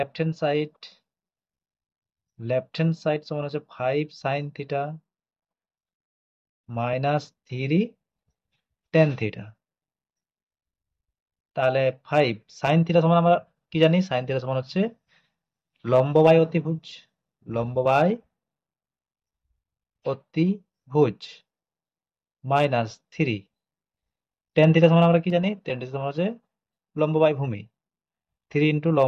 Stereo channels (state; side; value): identical; both; correlation 1.00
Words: হ্যান্ড সাইড সমান হচ্ছে 5 sin theta minus 3 tan theta. তাহলে 5 sin থিটা সমান আমরা কি জানি, sin থিটা সমান হচ্ছে লম্ব বাই অতিভুজ, লম্ব বাই অতিভুজ মাইনাস 3 tan থিটা সমান আমরা কি জানি, tan থিটা সমান হচ্ছে লম্ব বাই ভূমি, 3 ইন্টু